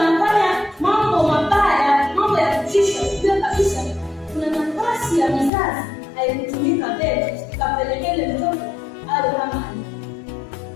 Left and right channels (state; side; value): drops out; right; at 5.5 s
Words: mambo mabaya, mambo ya kutisha, ujue kabisa kuna nafasi ya mzazi haikutumika mbele ikapelekele mtoto awe kama